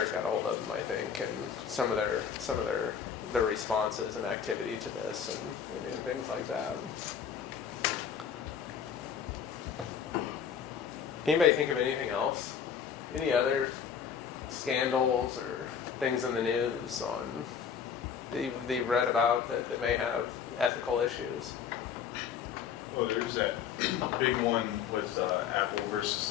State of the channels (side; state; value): right; quieter; 7.5 dB